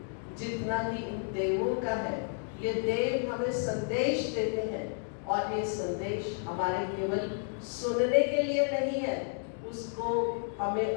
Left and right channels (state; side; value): silent; right; 57 dB below the other